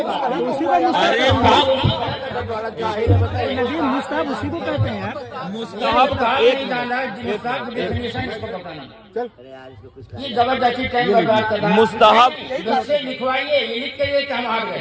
बात नहीं। अरे मुस्तहब उसी को कहते हैं यार। मुस्तहब का एक ये जबरदस्ती टाइम बर्बाद कर रहा है। मुस्तहब इससे लिखवाइए, ये लिख के लिए कि हम हार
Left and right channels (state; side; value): identical; both; correlation 1.00